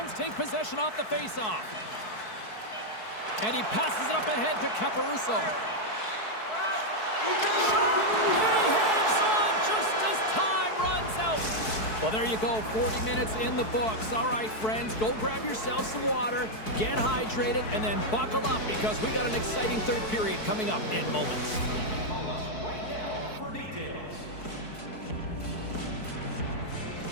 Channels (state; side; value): late; right; 4.6 ms